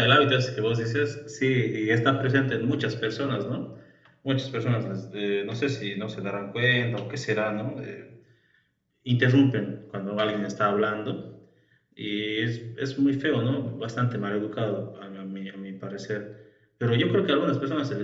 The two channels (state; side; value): identical; both; correlation 1.00